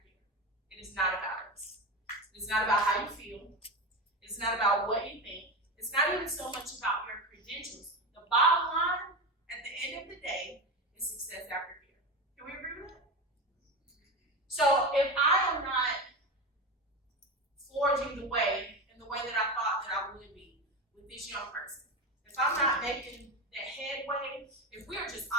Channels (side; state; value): both; normal; correlation 0.21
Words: It is not about us. It's not about how you feel. It's not about what you think. It's not even so much about your credentials. The bottom line, at the end of the day, is success after care. Can we agree with that? So if I am not forging the way in the way that I thought that I would be with this young person, if I'm not making that headway, if we